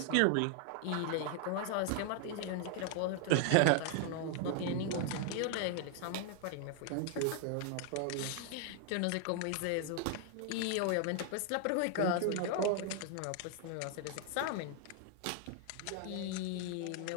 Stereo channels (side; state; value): both; different; correlation 0.00